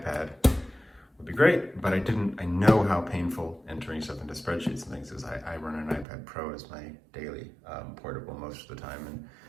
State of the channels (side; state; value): left; drops out; at 6.1 s